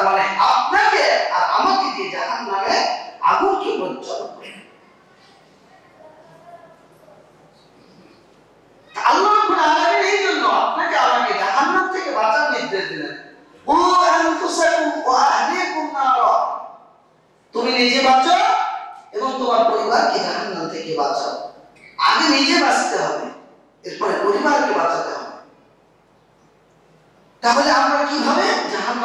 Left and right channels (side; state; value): both; identical; correlation 1.00